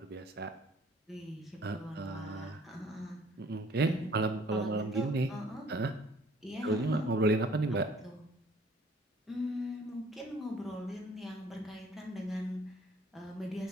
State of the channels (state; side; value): normal; both; correlation 0.56